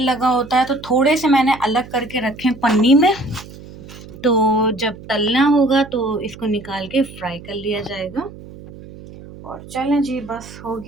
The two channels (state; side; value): noise; right; hum, 17 dB below the sound